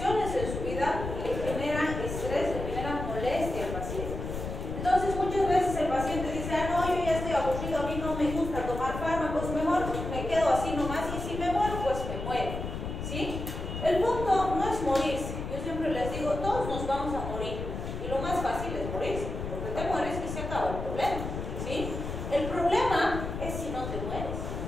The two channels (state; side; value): noise; left; rumble, 6 dB below the sound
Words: en su vida le generan estrés, le generan molestia al paciente. Entonces muchas veces el paciente dice, no, yo ya estoy aburrido, a mí no me gusta tomar fármacos, mejor me quedo así nomás y si me muero, pues me muero. ¿Sí? El punto no es morirse. Yo siempre les digo, todos nos vamos a morir. Y lo más fácil es morirse, porque te mueres y se acaba el problema. ¿Sí? El problema es si no te mueres.